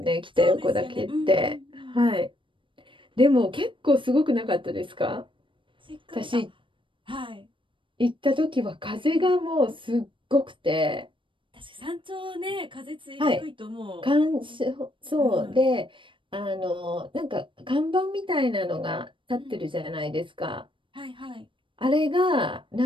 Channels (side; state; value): left; late; 0.25 ms